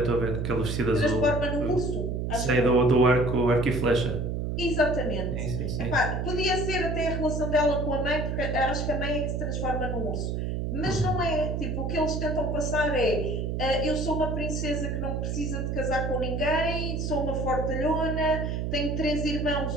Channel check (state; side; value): noise; right; hum, 1 dB below the sound